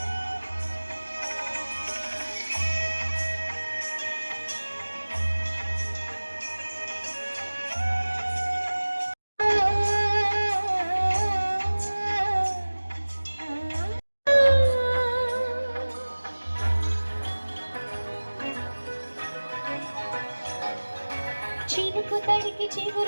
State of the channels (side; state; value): both; inverted; correlation -1.00